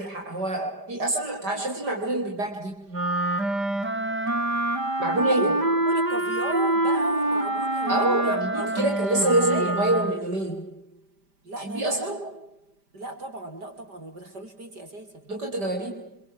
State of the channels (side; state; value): left; late; 5.0 ms